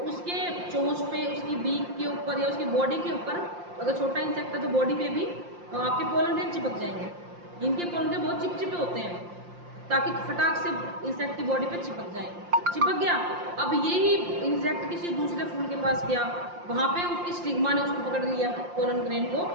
उसके चोंच पे, उसकी बीक के ऊपर या उसकी बॉडी के ऊपर, अगर छोटा इंसेक्ट है तो बॉडी पे भी आपके पोलन ग्रेन चिपक जाएंगे। इनके पोलन ग्रेन बहुत चिपचिपे होते हैं ताकि फटाक से इंसेक्ट की बॉडी पे चिपक जाएंगे। चिपक गया, अब यही इंसेक्ट किसी दूसरे फूल के पास गया, वहां पे उसकी स्टिग्मा ने उसको पकड़ लिया पोलन ग्रेन को,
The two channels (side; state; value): left; late; 5.7 ms